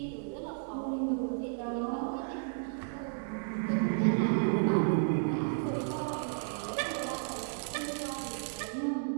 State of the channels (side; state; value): left; silent; digital silence